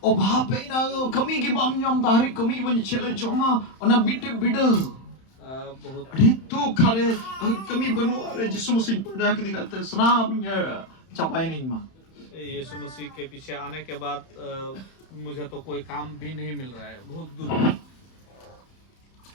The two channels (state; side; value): late; right; 31 ms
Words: ओ भापे ना कमी की बम यम तारी कमी की बन चले जोमा ओना बिट बिड बहुत अरे तू खरे कमी बनवा अरे जिसु मसीह पड़ा के दिखाते सनाम चपाए नहीं मां यीशु मसीह के पीछे आने के बाद मुझे तो कोई काम भी नहीं मिल रहा है, बहुत दुख।